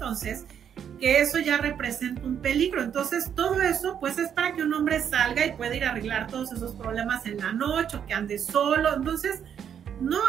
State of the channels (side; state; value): left; quieter; 8.5 dB